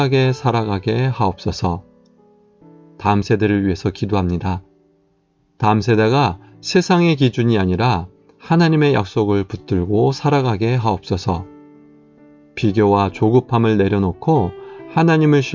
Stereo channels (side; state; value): both; identical; correlation 1.00